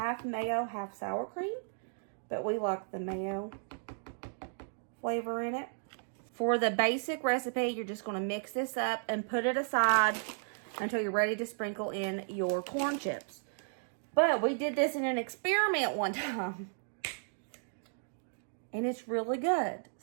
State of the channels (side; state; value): left; silent; digital silence